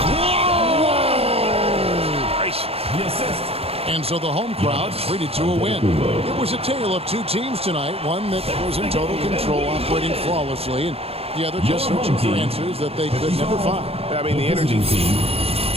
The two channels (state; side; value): late; left; 0.29 ms